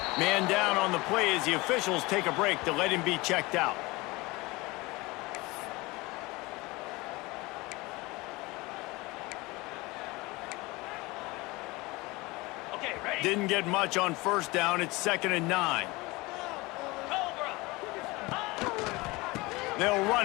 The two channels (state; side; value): quieter; right; 22.7 dB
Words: Man down on the play as the officials take a break to let him be checked out. Didn't get much on first down. It's 2nd and 9. They'll